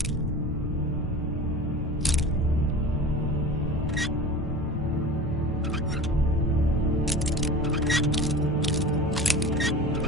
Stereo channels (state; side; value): normal; both; correlation 0.35